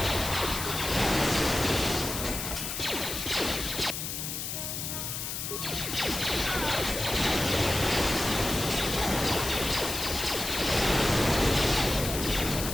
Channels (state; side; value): noise; left; hiss, 4 dB below the sound